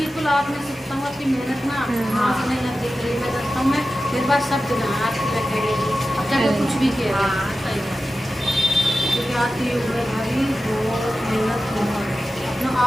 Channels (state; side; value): normal; both; correlation 0.93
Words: आपने सोचता हूँ आपकी मेहनत ना हाँ से नहीं देख रही, मैं देखता हूँ मैं मेरे पास सब जगह आपकी मैं कह रही हूँ अब चाहे कुछ भी कह रहे क्योंकि आपकी उम्र भारी बहुत मेहनत बहुत ना